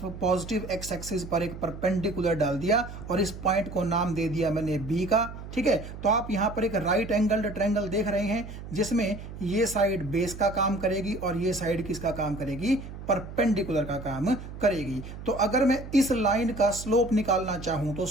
पॉजिटिव एक्स एक्सिस पर एक परपेंडिकुलर डाल दिया और इस पॉइंट को नाम दे दिया मैंने B का। ठीक है, तो आप यहाँ पर एक राइट एंगल्ड ट्रायंगल देख रहे हैं, जिसमें ये साइड बेस का काम करेगी और ये साइड किसका काम करेगी, परपेंडिकुलर का काम करेगी। तो अगर मैं इस लाइन का स्लोप निकालना चाहूं तो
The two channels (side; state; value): right; noise; hum, 11 dB below the sound